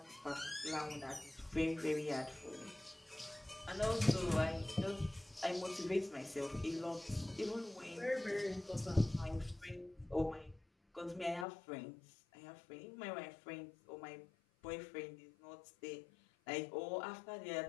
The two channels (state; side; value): drops out; right; at 11.5 s